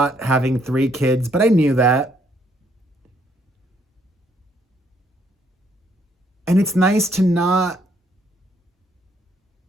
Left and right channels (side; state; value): both; normal; correlation 0.69